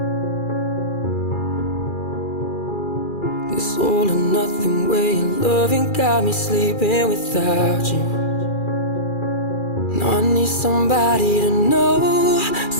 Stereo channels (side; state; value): right; late; 2.4 ms